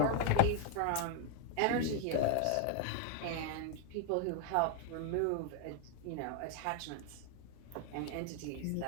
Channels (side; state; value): both; different; correlation 0.00